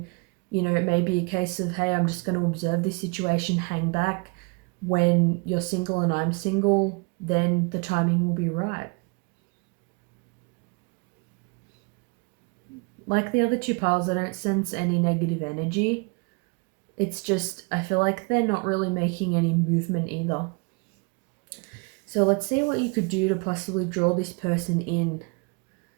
it may be a case of, hey, I'm just going to observe this situation, hang back. When you're single and I'm single, then the timing will be right. Like the other two piles, I don't sense any negative energy. It's just, I feel like they're not really making any movement either. So let's see what you could do to possibly draw this person in.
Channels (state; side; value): quieter; left; 31.0 dB